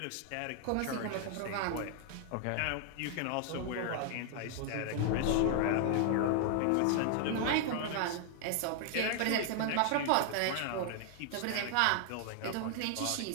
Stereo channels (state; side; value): different; both; correlation 0.00